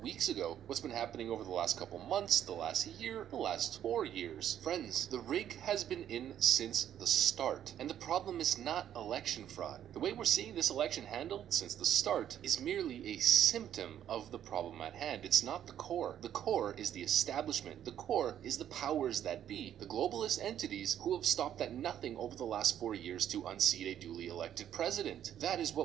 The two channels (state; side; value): quieter; left; 10.4 dB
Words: ago, what's been happening over the last couple months, the last year, the last 4 years. Friends, the rig has been in since the start, and the problem is not election fraud. The way we're seeing this election handled since the start is merely a symptom of the problem at hand. It's not the core. The core is the establishment. The core is the powers that be, the globalist entities who have stopped at nothing over the last 4 years to unseat a duly elected president. That is